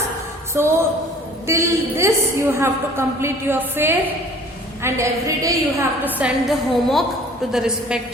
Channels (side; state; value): both; normal; correlation 0.50